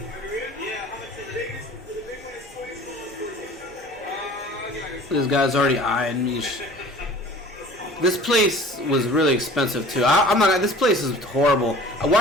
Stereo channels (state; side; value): normal; both; correlation 0.45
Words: This guy's already eyeing me. This place was really expensive too. I'm not. This place is horrible.